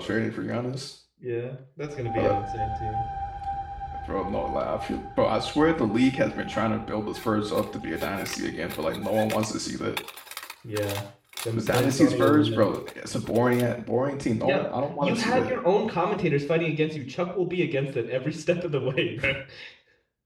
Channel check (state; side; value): identical; both; correlation 1.00